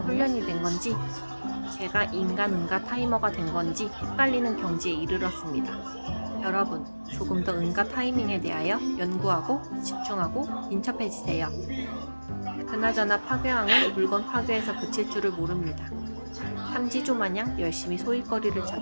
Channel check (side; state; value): both; inverted; correlation -1.00